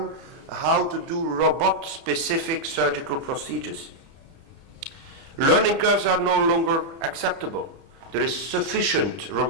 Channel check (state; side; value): late; left; 30 ms